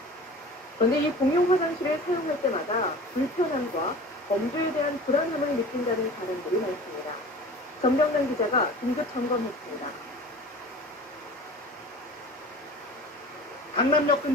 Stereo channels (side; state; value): both; normal; correlation 0.40